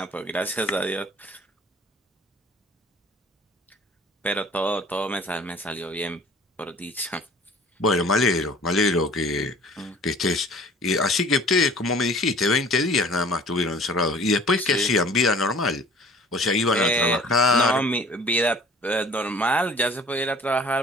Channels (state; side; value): normal; both; correlation 0.48